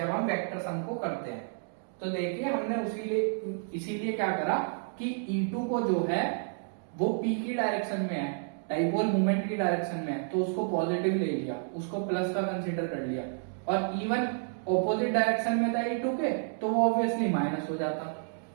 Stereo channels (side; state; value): left; silent; digital silence